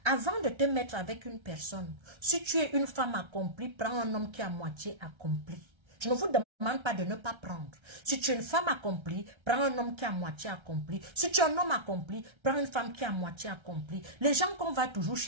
Avant de te mettre avec une personne, si tu es une femme accomplie, prends un homme qui est à moitié accompli. Je ne vous demande pas de ne pas prendre. Si tu es une femme accomplie, prends un homme qui est à moitié accompli. Si tu es un homme accompli, prends une femme qui est à moitié accomplie. Les gens qu'on va toujours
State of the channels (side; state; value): left; late; 1.3 ms